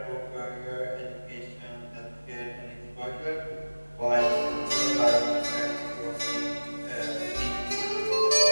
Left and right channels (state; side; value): inverted; both; correlation -1.00